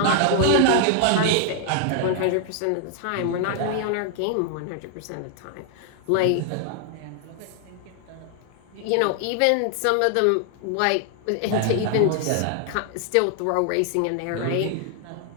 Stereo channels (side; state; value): both; different; correlation 0.00